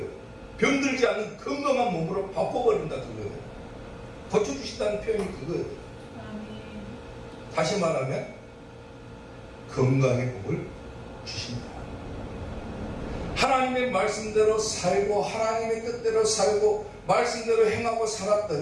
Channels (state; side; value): identical; both; correlation 1.00